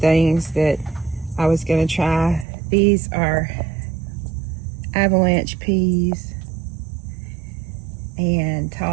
that I was going to try. These are avalanche peas and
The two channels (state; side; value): drops out; left; at 2.5 s